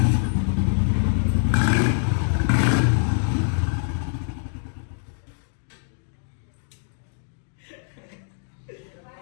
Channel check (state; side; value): silent; right; digital silence